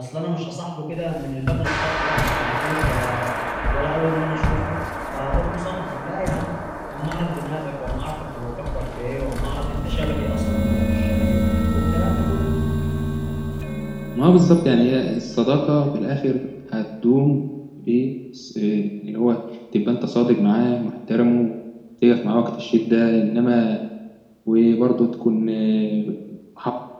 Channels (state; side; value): identical; both; correlation 1.00